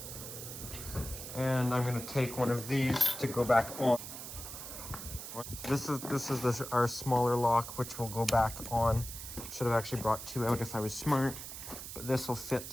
And I'm gonna take one of these to go back on. This is our smaller lock, which will go back on. Should have actually brought 2 out if I was smart, but this will fit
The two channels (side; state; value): right; noise; hiss, 9 dB below the sound